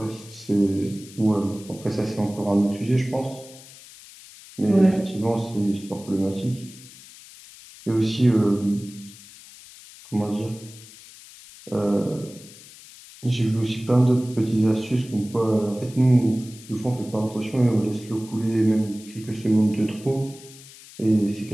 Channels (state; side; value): noise; left; hiss, 19 dB below the sound